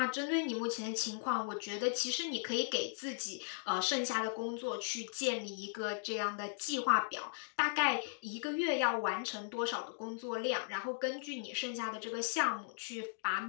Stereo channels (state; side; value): silent; right; digital silence